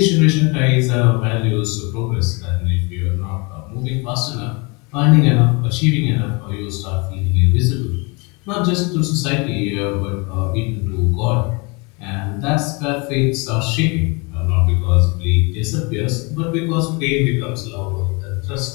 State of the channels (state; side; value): quieter; right; 29.3 dB